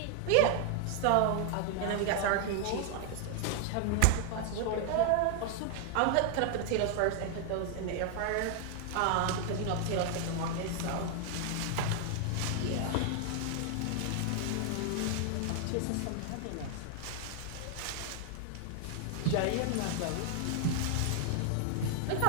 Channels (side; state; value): both; different; correlation 0.00